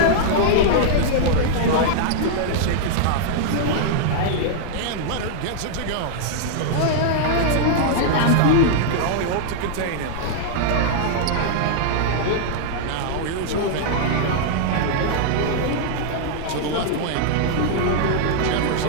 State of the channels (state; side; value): different; both; correlation -0.01